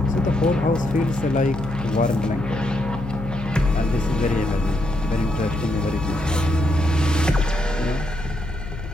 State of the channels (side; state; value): left; noise; hum, 10 dB below the sound